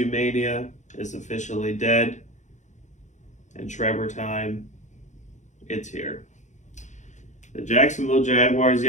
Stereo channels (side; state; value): right; late; 0.35 ms